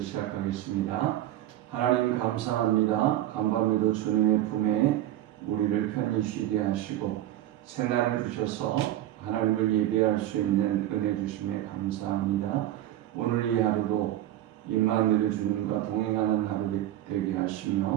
하나님 감사합니다. 간밤에도 주님의 품에 우리를 편히 쉬게 하시고 새날을 주셔서 하나님을 예배할 수 있는 은혜 주심에 감사합니다. 오늘 이 하루도 임마누엘 주님과 동행하는 하루 되게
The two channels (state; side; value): quieter; left; 13.6 dB